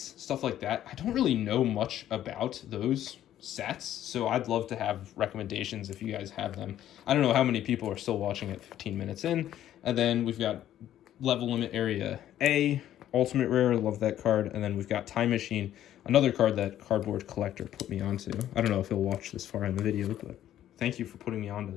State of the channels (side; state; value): right; quieter; 11.9 dB